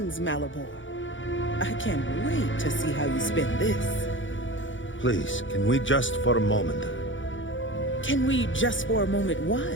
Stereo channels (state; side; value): late; right; 0.56 ms